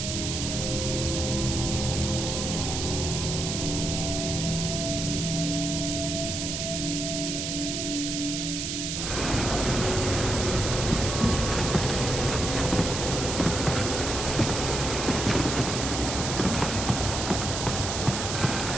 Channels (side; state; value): right; noise; hiss, 3 dB below the sound